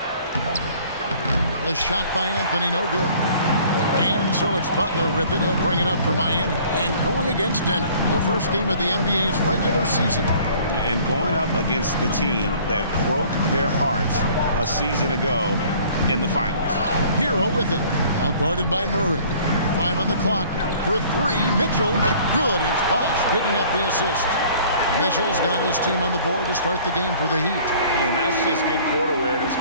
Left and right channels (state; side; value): inverted; both; correlation -0.53